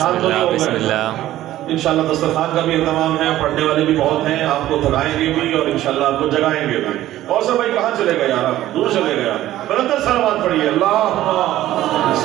تو نہیں ہو بسم گئے؟ اللہ۔ انشاءاللہ دسترخوان کا بھی اہتمام ہے، پڑھنے والے بھی بہت ہیں، آپ کو تھکائیں گے بھی اور انشاءاللہ آپ کو جگائیں گے بھی۔ اور سب بھائی کہاں چلے گئے یار، آپ دور چلے گئے؟ بلندر صلوات پڑھیے، اللہم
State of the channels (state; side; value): quieter; left; 14.2 dB